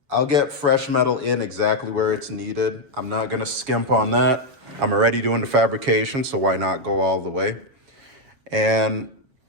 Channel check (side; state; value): left; late; 7.1 ms